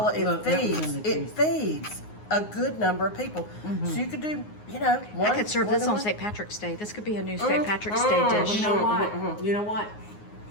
Look, that was in the it feeds a good number of people. So you could do, one. I could serve this on one. St. Patrick's Day. This could be a new St. Patrick's Day dish. You know what? You know what?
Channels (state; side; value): late; right; 9.6 ms